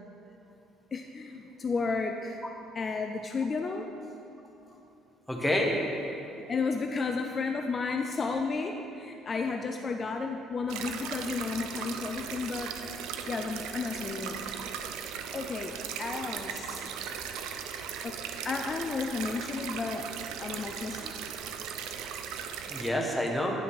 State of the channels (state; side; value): normal; both; correlation 0.72